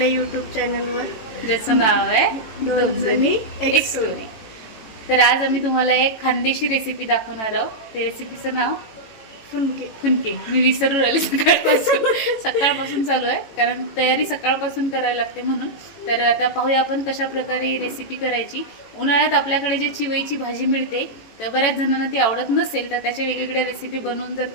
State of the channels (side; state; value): right; late; 18 ms